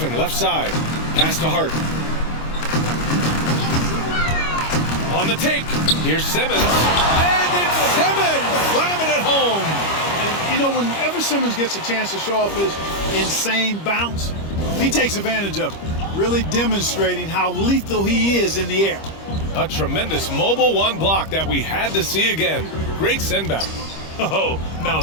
left side. Pass to Hart. On the take. Here's Simmons. And it's Simmons! Slamming it home. And, you know, whenever Simmons gets a chance to show off his insane bounce, he takes advantage of it. Really demonstrating how lethal he is in the air. A tremendous mobile 1 block that we had to see again. Great send back. Oh, now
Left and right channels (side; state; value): right; late; 25 ms